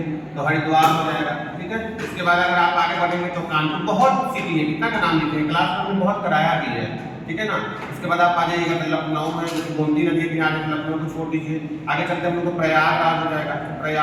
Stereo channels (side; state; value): both; identical; correlation 1.00